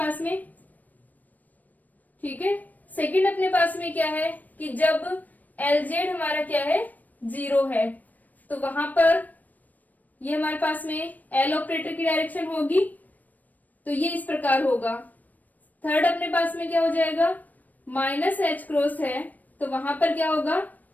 में। ठीक है, सेकंड अपने पास में क्या है कि जब एल जेड हमारा क्या है, 0 है, तो वहां पर ये हमारे पास में एल ऑपरेटर की डायरेक्शन होगी, तो ये इस प्रकार होगा। थर्ड अपने पास में क्या हो जाएगा, माइनस एच क्रॉस है, तो वहां पर क्या होगा,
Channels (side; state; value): right; late; 0.081 ms